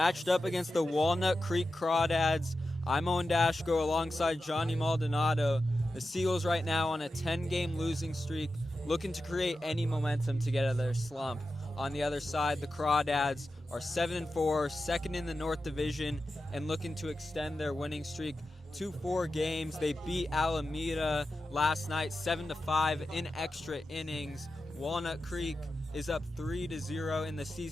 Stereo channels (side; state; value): both; normal; correlation 0.91